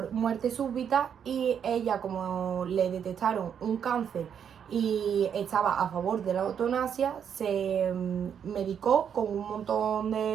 muerte súbita y ella, como le detectaron un cáncer y estaba a favor de la eutanasia, se medicó con un montón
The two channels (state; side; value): quieter; left; 8.1 dB